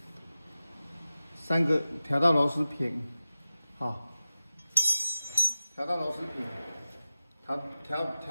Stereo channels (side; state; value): both; inverted; correlation -0.93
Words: ，3个调到螺丝平，好，调到螺丝平，